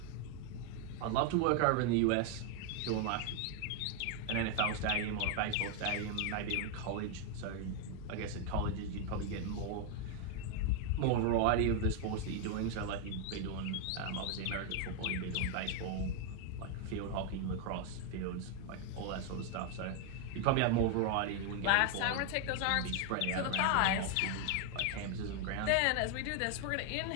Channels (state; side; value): different; both; correlation 0.01